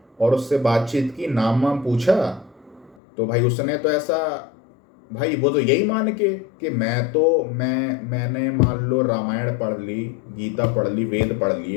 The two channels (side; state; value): right; drops out; at 3.0 s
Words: और उससे बातचीत की, नाम वाम पूछा, तो भाई उसने तो ऐसा, भाई वो तो यही मान के कि मैंने मान लो रामायण पढ़ ली, गीता पढ़ ली, वेद पढ़